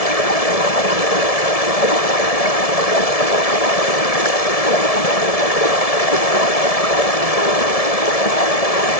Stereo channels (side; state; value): right; late; 1.7 ms